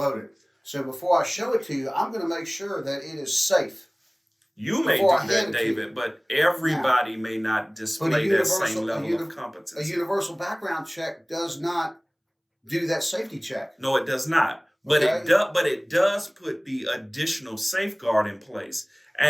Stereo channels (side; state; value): both; identical; correlation 1.00